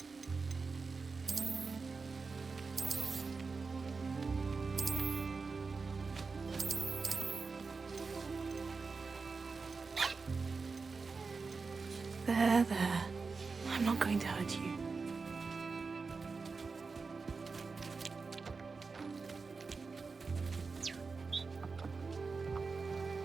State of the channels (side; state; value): left; quieter; 4.5 dB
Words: There. I'm not going to hurt you.